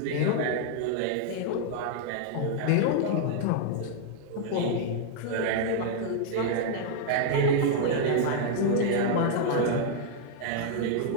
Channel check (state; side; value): different; both; correlation 0.00